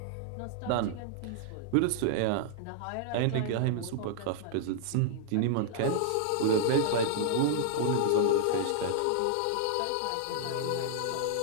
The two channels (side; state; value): both; different; correlation -0.01